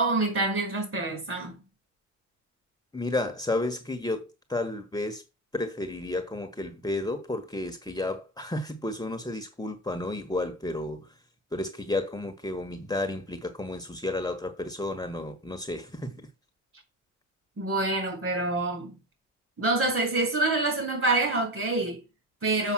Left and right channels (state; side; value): normal; both; correlation 0.24